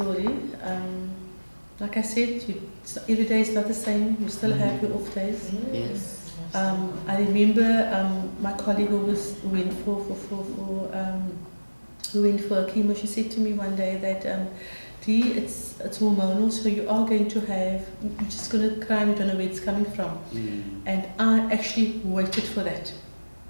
Like I said, every day is not the same. You still have your off days. Yes. I remember my colleague who went for chemo. She said to me one day that, Dee, it's hormonal, so you are going to have, you're just going to cry and you don't know where it's coming from. And I actually waited for that.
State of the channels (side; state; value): both; inverted; correlation -1.00